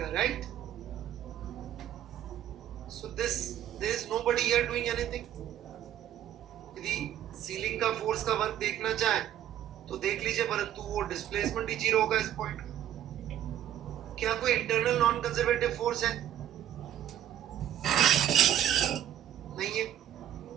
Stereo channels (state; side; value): quieter; left; 11.2 dB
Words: right? So this there is nobody here doing anything. यदि सीलिंग का फोर्स का वर्क देखना चाहे तो देख लीजिए, परंतु वो डिस्प्लेसमेंट ही जीरो होगा इस पॉइंट का। क्या कोई इंटरनल नॉन कंजर्वेटिव फोर्स है? नहीं है।